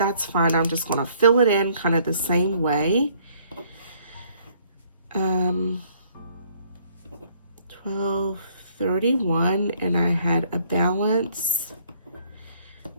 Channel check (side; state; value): both; inverted; correlation -0.62